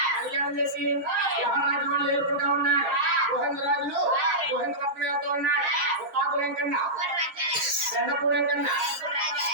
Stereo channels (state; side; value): late; left; 7.4 ms